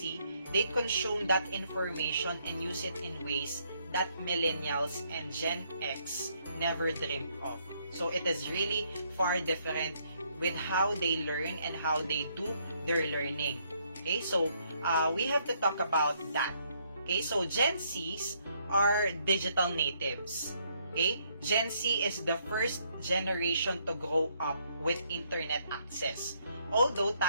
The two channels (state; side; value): inverted; both; correlation -0.71